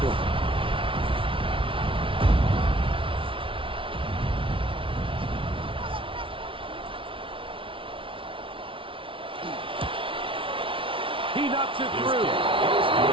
He knocks it through.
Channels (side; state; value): left; late; 0.25 ms